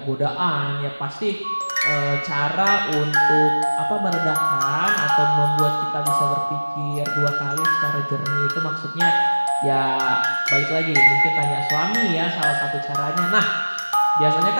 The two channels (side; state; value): both; inverted; correlation -1.00